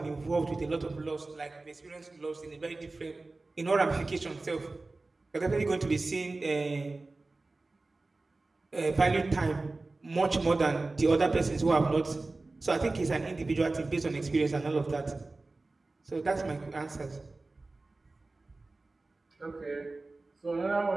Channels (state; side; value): quieter; left; 3.3 dB